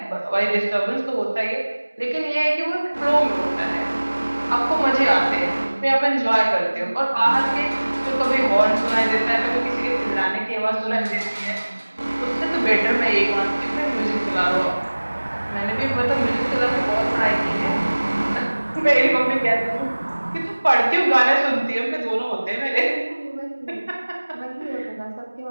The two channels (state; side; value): inverted; both; correlation -1.00